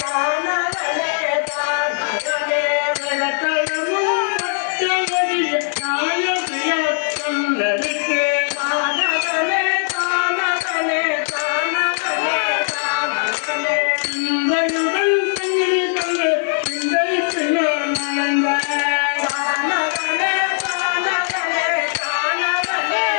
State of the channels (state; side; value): silent; right; digital silence